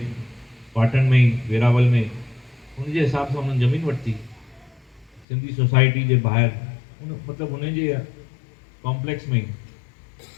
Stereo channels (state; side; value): drops out; right; at 5.2 s